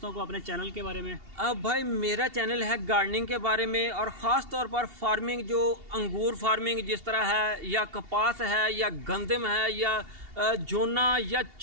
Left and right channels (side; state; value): left; late; 2.8 ms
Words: को अपने चैनल के बारे में। अब भाई, मेरा चैनल है गार्डनिंग के बारे में, और ख़ास तौर पर फार्मिंग, जो अंगूर फार्मिंग जिस तरह है, या कपास है, या गंदम है, या जोना, या